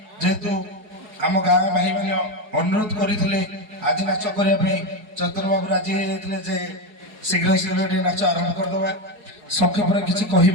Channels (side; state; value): left; late; 4.7 ms